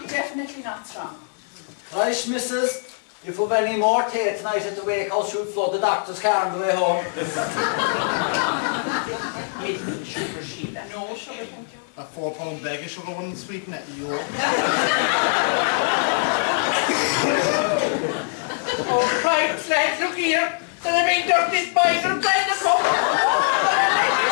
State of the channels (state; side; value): silent; right; digital silence